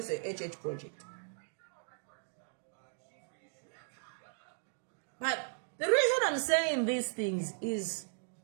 a HH project. But the reason I'm saying these things is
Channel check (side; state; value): left; silent; digital silence